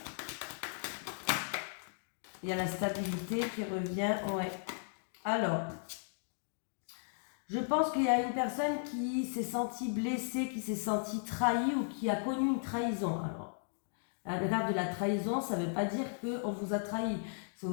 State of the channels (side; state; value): right; silent; digital silence